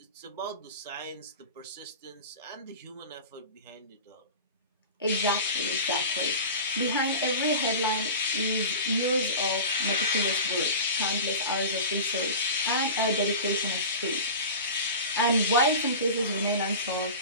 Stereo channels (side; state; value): both; inverted; correlation -0.32